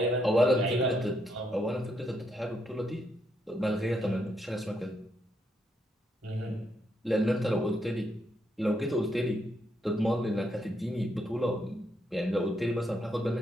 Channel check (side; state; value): both; normal; correlation 0.77